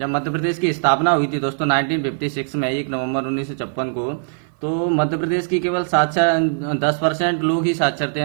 मध्य प्रदेश की स्थापना हुई थी दोस्तों 1956 में 1 नवंबर 1956 को, तो मध्य प्रदेश की केवल 10% लोग ही साक्षर थे,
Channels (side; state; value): left; silent; 57 dB below the other